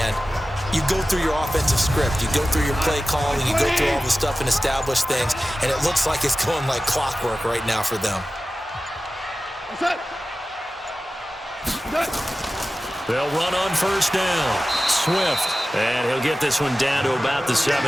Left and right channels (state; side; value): normal; both; correlation 0.95